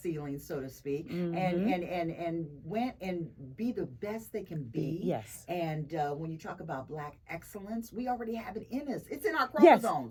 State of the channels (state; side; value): identical; both; correlation 1.00